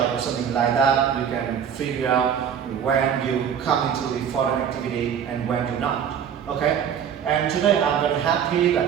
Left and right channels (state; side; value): quieter; left; 8.1 dB